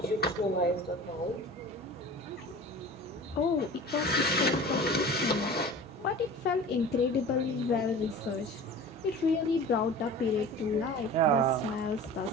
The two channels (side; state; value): both; normal; correlation 0.39